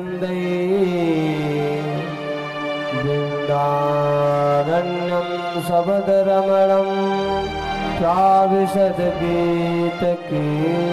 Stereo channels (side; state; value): both; identical; correlation 1.00